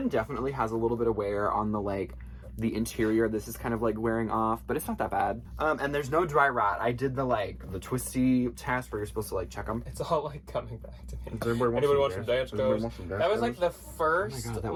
definitely has a little bit of wear on the like the interior. This is kind of like wearing off, but it's not that bad. And there's no dry rot. I did the twisty test where you're supposed to like check them. It's all like coming back to me. Anybody want some Danskos? That was like the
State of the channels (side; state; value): both; identical; correlation 1.00